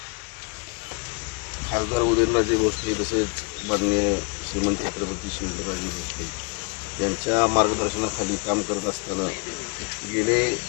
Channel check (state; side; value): quieter; right; 33.8 dB